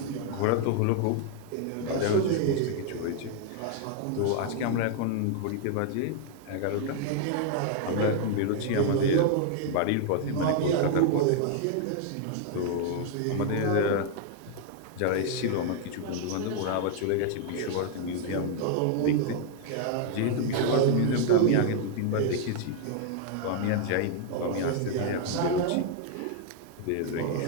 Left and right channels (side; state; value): both; different; correlation 0.00